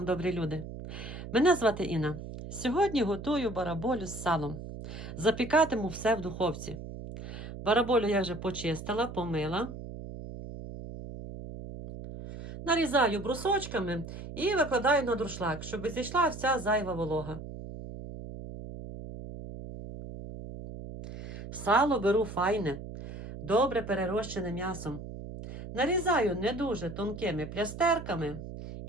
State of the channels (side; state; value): right; noise; hum, 10 dB below the sound